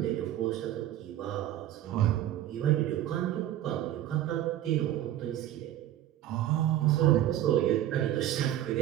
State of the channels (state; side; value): quieter; left; 12.7 dB